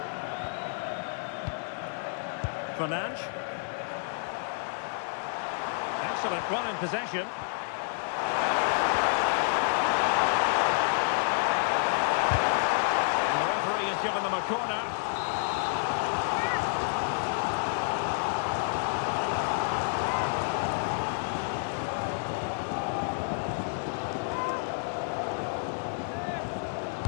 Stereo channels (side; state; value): right; silent; 58 dB below the other